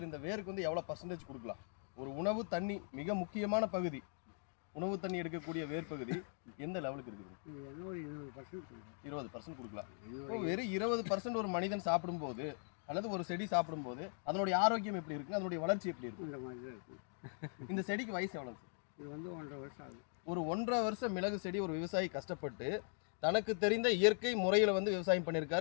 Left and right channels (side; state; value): right; silent; 51 dB below the other